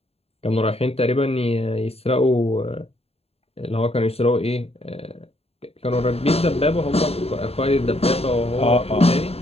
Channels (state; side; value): late; right; 0.29 ms